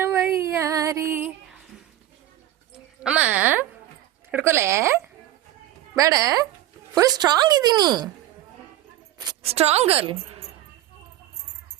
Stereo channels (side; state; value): left; quieter; 13.7 dB